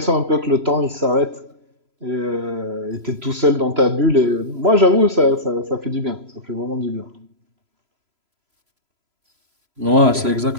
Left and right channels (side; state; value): left; late; 3.0 ms